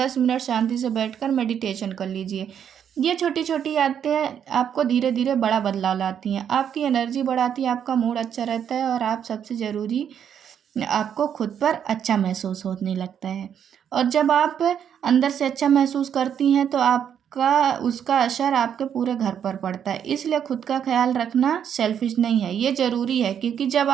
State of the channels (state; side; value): quieter; left; 8.7 dB